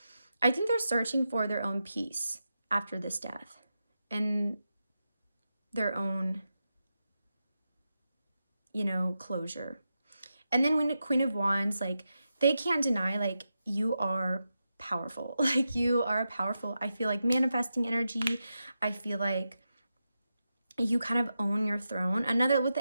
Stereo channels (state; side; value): inverted; both; correlation -0.89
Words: I think they're searching for their own peace after this death, and their own, you know, closure. And then when the Queen of Wands, like, they can't deny, like, you are powerful. Like, you are powerful. I feel like manifesting energy. I feel like you kind of own your throne. Another with